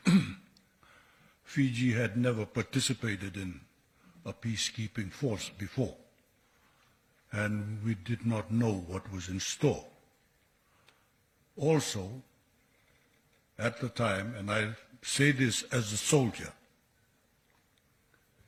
Fiji had never participated in a peacekeeping force before, and we did not know what was in store. Also, at the time, and I say this as a soldier,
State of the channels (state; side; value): identical; both; correlation 1.00